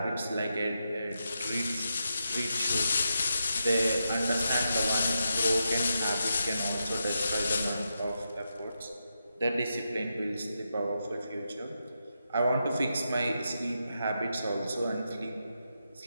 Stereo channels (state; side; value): inverted; both; correlation -0.85